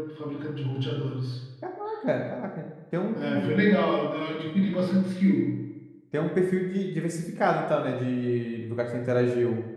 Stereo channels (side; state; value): both; identical; correlation 1.00